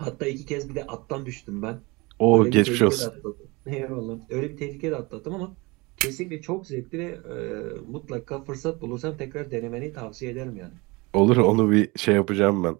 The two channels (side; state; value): left; quieter; 25.0 dB